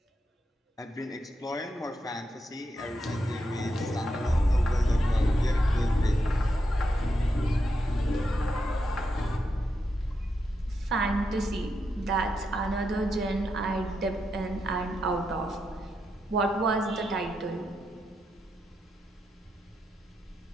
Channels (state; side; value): normal; both; correlation 0.84